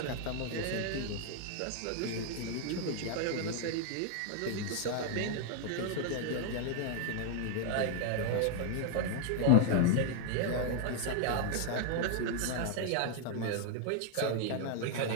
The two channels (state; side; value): different; both; correlation 0.00